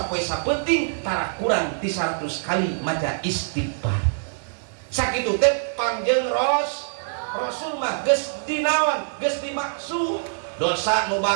sapenting tara kurang ti 100 kali maca istighfar sakitu teh Kangjeng Rasul mah geus dinaon geus dimaksud dosa nu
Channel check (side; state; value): left; silent; digital silence